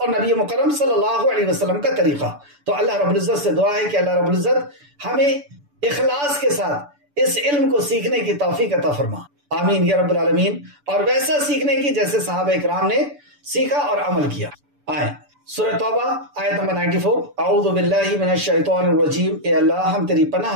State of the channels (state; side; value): late; left; 6.9 ms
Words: نبی مکرم صلی اللہ علیہ وسلم کا طریقہ۔ تو اللہ رب العزت سے دعا ہے کہ اللہ رب العزت ہمیں اخلاص کے ساتھ اس علم کو سیکھنے کی توفیق عطا فرما، آمین یا رب العالمین، اور ویسا سیکھنے کی جیسے صحابہ اکرام نے سیکھا اور عمل کیا۔ آئیں سورہ توبہ آیت نمبر 94، اعوذ باللہ من الشیطان الرجیم، اے اللہ ہم تیری